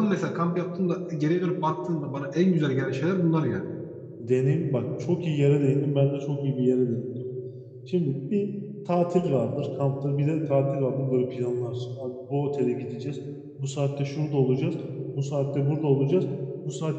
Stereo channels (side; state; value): both; identical; correlation 1.00